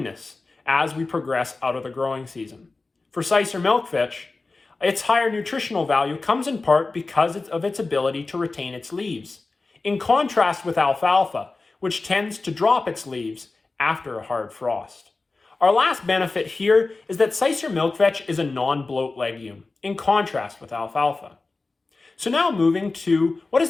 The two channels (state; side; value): quieter; right; 3.6 dB